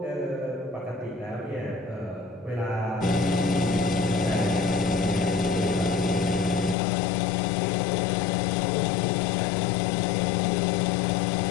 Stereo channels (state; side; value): drops out; right; at 6.8 s